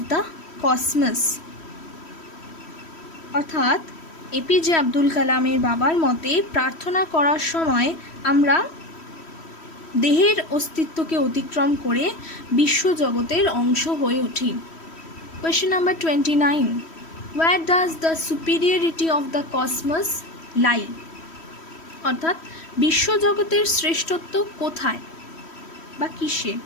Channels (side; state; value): right; late; 3.1 ms